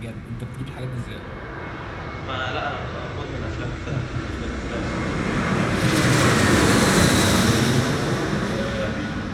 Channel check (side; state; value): both; identical; correlation 1.00